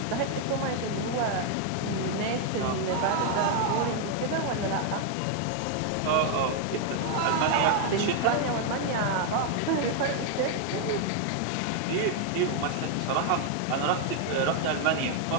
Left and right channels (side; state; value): both; different; correlation 0.00